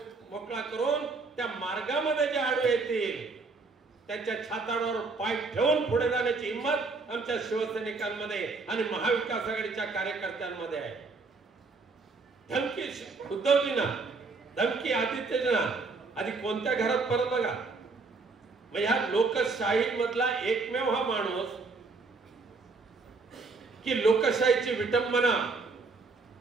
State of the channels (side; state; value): left; quieter; 4.0 dB